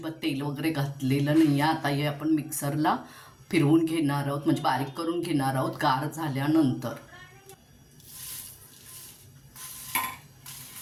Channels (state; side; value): identical; both; correlation 1.00